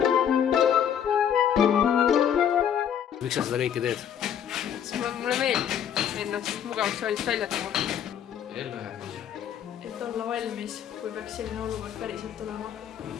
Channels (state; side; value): quieter; right; 9.0 dB